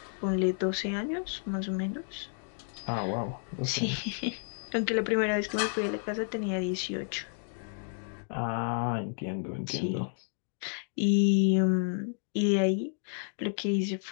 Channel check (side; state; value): right; silent; 57 dB below the other